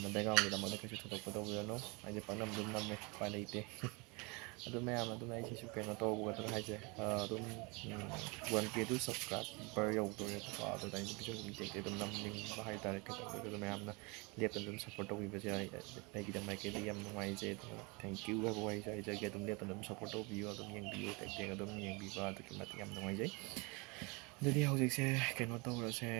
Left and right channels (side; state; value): left; quieter; 28.5 dB